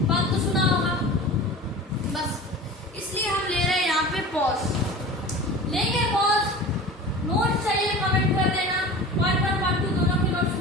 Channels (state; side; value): normal; both; correlation 0.36